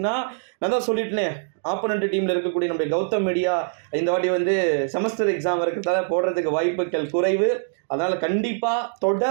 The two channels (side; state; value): left; silent; digital silence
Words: நான் தான் சொல்லிட்டேனே, ஆப்போனண்ட் டீமில் இருக்கக்கூடிய நம்முடைய கௌதம் மீடியா இந்த வாட்டி வந்து செமஸ்டர் எக்ஸாம் இருக்கிறதால போடுறதுக்கு வாய்ப்புகள் குறைவு. அதனால் கண்டிப்பாக